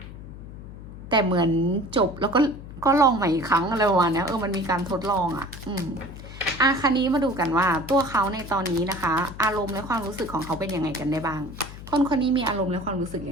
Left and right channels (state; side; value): noise; left; hum, 14 dB below the sound